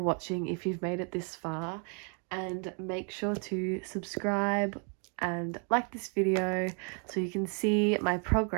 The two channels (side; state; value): left; quieter; 38.7 dB